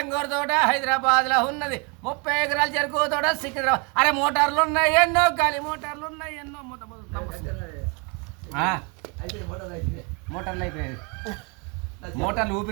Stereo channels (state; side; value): quieter; left; 33.0 dB